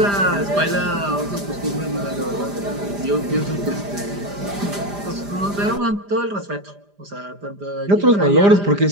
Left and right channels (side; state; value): left; late; 5.0 ms